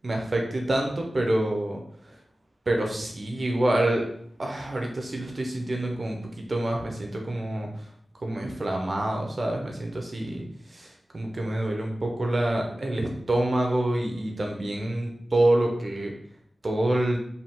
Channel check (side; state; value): both; normal; correlation 0.96